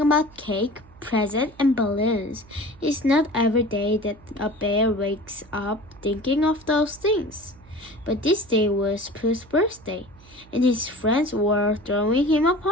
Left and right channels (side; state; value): right; noise; hum, 25 dB below the sound